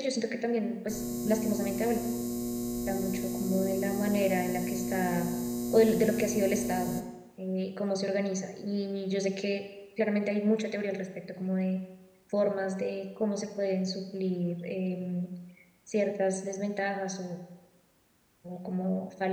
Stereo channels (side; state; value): both; identical; correlation 1.00